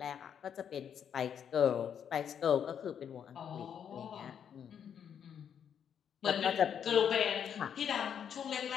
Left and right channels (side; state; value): right; quieter; 8.3 dB